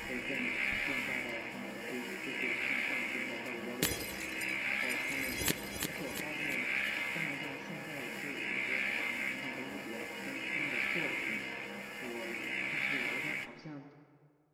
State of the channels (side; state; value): both; identical; correlation 1.00